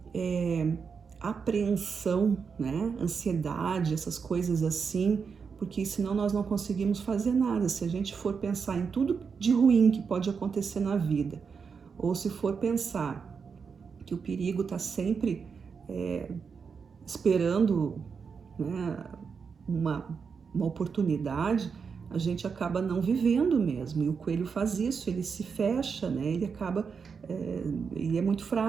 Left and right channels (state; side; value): quieter; left; 5.8 dB